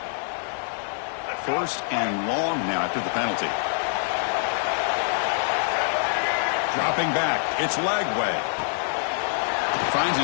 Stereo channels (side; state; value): right; silent; digital silence